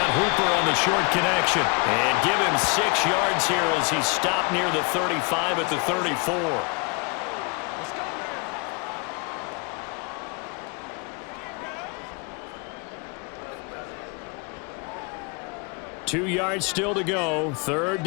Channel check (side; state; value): right; quieter; 32.1 dB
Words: Hooper on the short connection. And give him 6 yards here as he's stopped near the 35 at the 34. Two yards still to go. 3rd